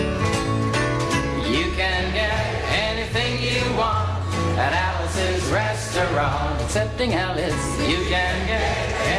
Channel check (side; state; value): both; identical; correlation 1.00